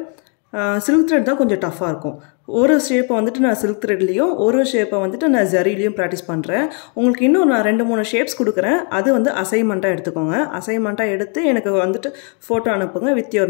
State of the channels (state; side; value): quieter; right; 39.2 dB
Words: silk thread தான் கொஞ்சம் டஃபா இருக்கும். ஒரு ஷேப்பை வந்துட்டு நான் silk threadலயும் ஒரு ஷேப்பை வந்துட்டு நான் ஜரிலயும் பிராக்டீஸ் பண்றேன். உங்களுக்கு இன்னும் நான் 2-3 ஷேப்ஸ் கொடுக்கிறேன். அது வந்து அசைன்மெண்டா எடுத்துக்கோங்க. அசைன்மெண்டா எடுத்து எனக்கு வந்துட்டு போட்டோ அனுப்புங்க வித்